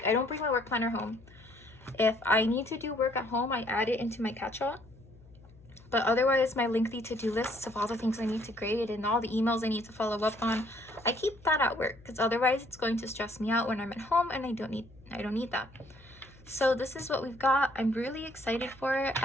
I don't bring my work planner home. If I need to do work at home, I add it into my catch-all. But otherwise, my lengthy to-do lists of all the things I need to grade and all the emails I need to follow up on, I keep that at work, because otherwise it's going to stress me out when I'm at home, and I don't need that. So this is what we've got. I'm really excited for it.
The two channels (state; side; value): noise; left; hum, 24 dB below the sound